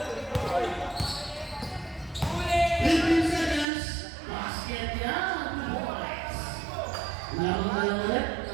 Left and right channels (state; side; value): drops out; left; at 3.7 s